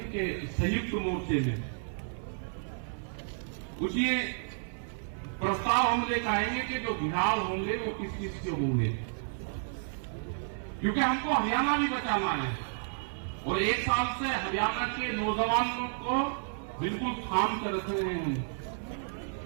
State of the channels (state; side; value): silent; left; 57 dB below the other